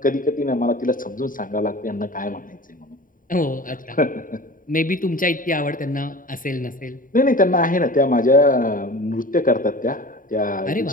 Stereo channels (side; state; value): right; late; 0.39 ms